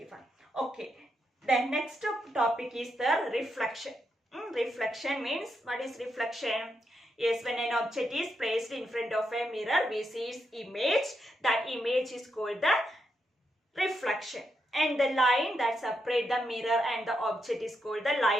Okay, the next topic is the reflection. Reflection means, what is reflection? Yes, when an object is placed in front of a mirror, we see its image. That image is called the reflection. And the line that separates the mirror and the object is called the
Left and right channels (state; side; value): normal; both; correlation 0.82